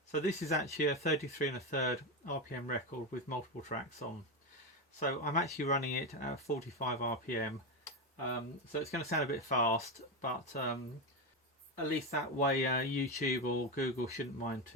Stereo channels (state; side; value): normal; both; correlation 0.13